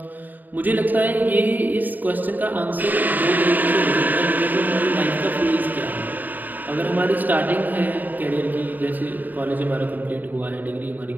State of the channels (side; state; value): left; late; 0.087 ms